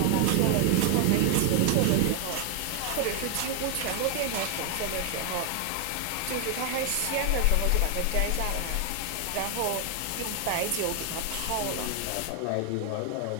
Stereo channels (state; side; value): different; both; correlation 0.00